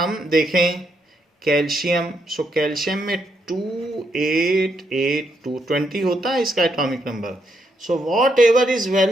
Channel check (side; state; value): both; normal; correlation 0.78